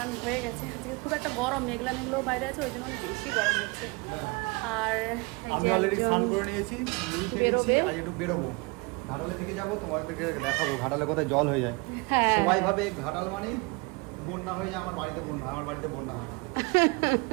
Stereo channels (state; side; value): quieter; left; 27.5 dB